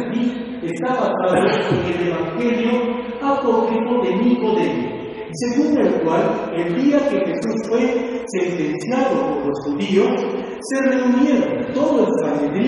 aquí está basado en el evangelio apócrifo de Nicodemo, según el cual, el día que Jesús fue sentenciado por los judíos, se reunieron todo el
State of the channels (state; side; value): identical; both; correlation 1.00